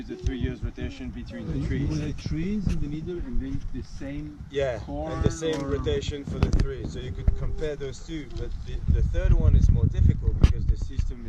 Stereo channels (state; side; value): identical; both; correlation 1.00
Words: the 3 years rotation between the trees. You put trees in the middle and then the same corn and the same rotation for the 3. So you could compare those two, but the third one is more difficult because the system